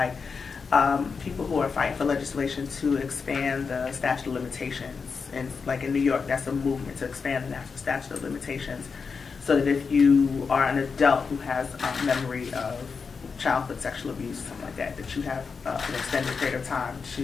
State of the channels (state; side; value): quieter; right; 5.3 dB